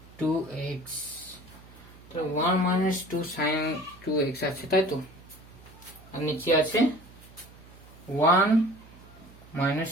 2x। তো 1 minus 2 sin 2x আছে, তাই তো? আর নিচে আছে 1 minus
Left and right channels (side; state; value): right; noise; hum, 22 dB below the sound